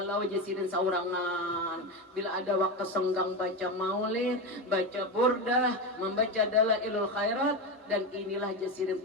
jasirin saurangan, bila ada waktu senggang baca maulid, baca burdah, membaca dalailul khairat, dan inilah jasirin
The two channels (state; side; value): normal; both; correlation 0.16